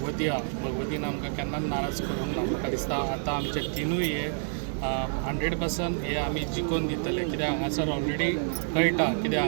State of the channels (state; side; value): silent; left; 59 dB below the other